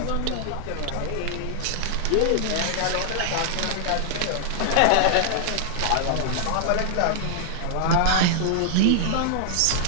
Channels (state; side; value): different; both; correlation -0.01